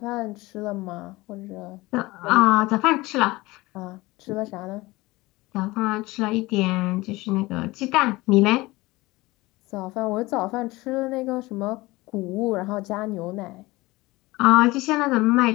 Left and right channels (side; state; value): right; quieter; 20.8 dB